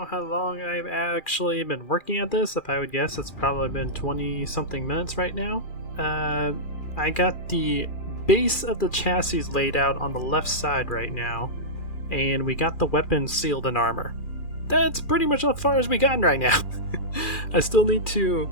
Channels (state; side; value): late; right; 2.4 ms